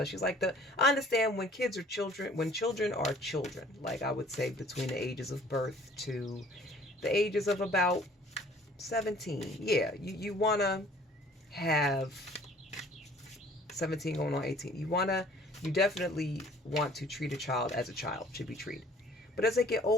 like I understand when kids are children, when children are children, like I would say between the ages of birth to the ages of about 17. Yeah, you want to have 17 going on 18. You definitely want to treat a child as a child should be treated. But as they get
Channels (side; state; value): both; normal; correlation 0.53